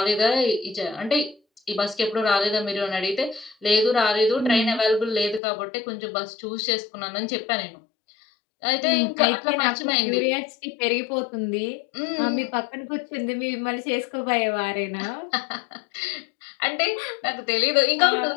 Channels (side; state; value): right; drops out; at 5.4 s